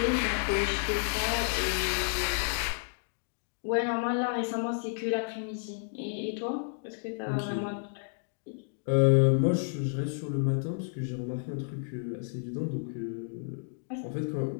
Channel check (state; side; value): silent; right; digital silence